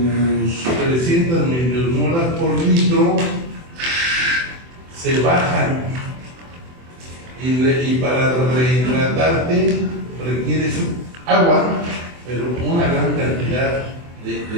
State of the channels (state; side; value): late; left; 24 ms